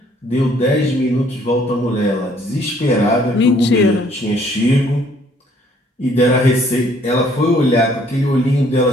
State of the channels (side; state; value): both; normal; correlation 0.62